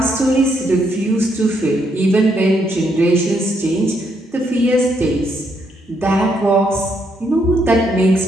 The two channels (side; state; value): both; normal; correlation 0.75